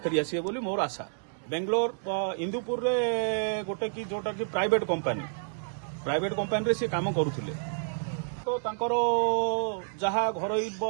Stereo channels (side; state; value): left; silent; 58 dB below the other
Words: ଫେରିଆସିବେ ବୋଲି ମୋର ଆଶା। ବେଙ୍ଗଲୋର ଇନ୍ଦୁପୁରରେ ଗୋଟେ କି ଯୋଉଟା କି ପ୍ରାଇଭେଟ କମ୍ପାନୀରେ ସେ କାମ କରୁଥିଲେ। ତ ତାଙ୍କର ଯାହା ଘରୋଇ